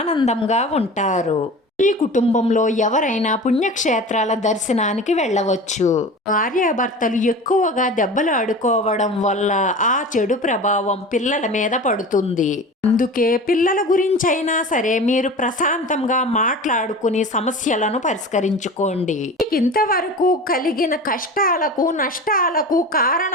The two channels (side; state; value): both; normal; correlation 0.34